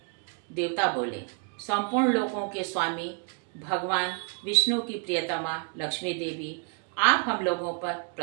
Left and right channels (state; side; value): quieter; left; 37.0 dB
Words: देवता बोले, संपूर्ण लोकों के स्वामी भगवान विष्णु की प्रियतमा लक्ष्मी देवी, आप हम लोगों पर